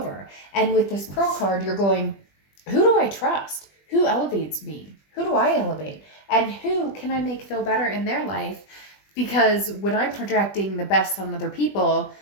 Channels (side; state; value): right; late; 20 ms